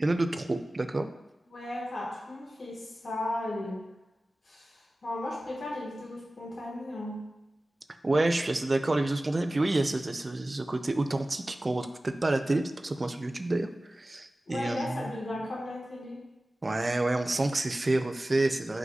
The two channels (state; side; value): normal; both; correlation 0.97